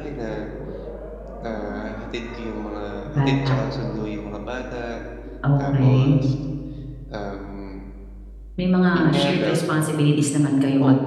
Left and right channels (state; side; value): identical; both; correlation 1.00